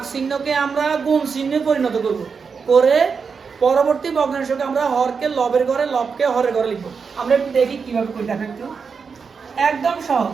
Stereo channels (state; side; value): quieter; left; 5.6 dB